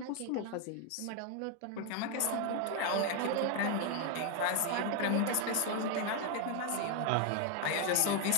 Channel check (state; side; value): different; both; correlation 0.01